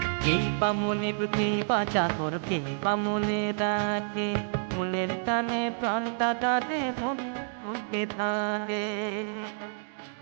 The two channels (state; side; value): silent; left; digital silence